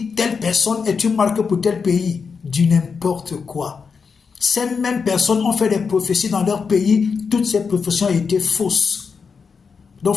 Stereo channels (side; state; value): right; quieter; 5.5 dB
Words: telle personne est une marque pour tel pays. Du n'importe quoi. Ces mêmes personnes ont fait des prophéties dans leur pays, toutes ces prophéties ont été fausses. Donc